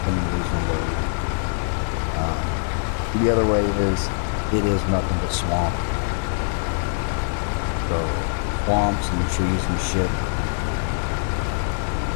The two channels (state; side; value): silent; right; 63 dB below the other